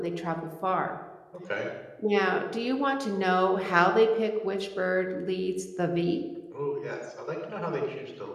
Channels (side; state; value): both; identical; correlation 1.00